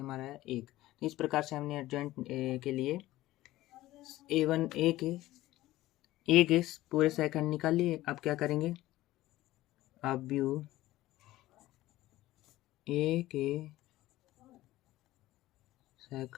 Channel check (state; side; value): quieter; right; 16.3 dB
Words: है 1। तो इस प्रकार से हमने एडजॉइंट के लिए A1 ए के पूरे सेकंड निकाल लिए। अब क्या करेंगे, अब व्यू ए के